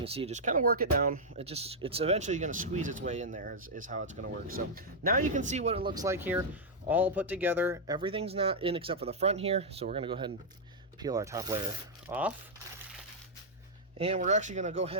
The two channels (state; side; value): normal; both; correlation -0.05